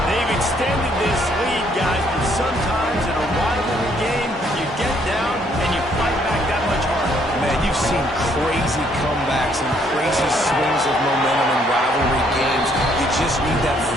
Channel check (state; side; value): normal; both; correlation 0.67